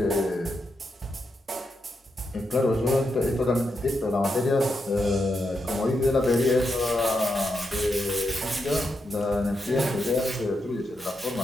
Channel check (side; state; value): both; normal; correlation 0.84